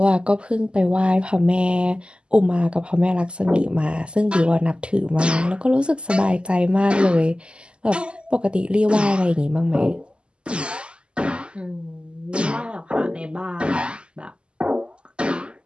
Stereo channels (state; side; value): late; left; 0.051 ms